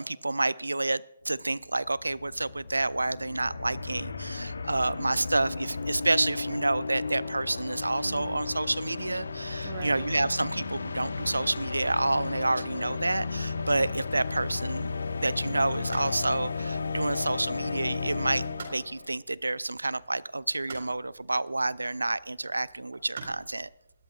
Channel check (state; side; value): inverted; both; correlation -0.95